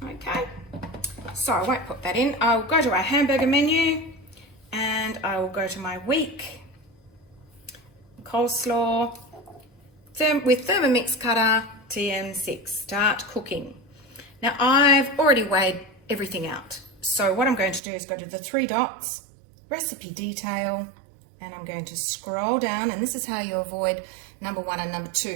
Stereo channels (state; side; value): drops out; left; at 17.8 s